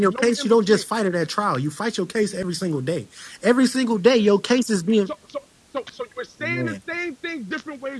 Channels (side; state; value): both; identical; correlation 1.00